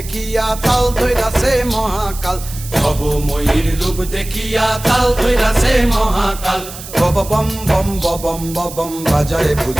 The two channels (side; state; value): right; noise; hiss, 13 dB below the sound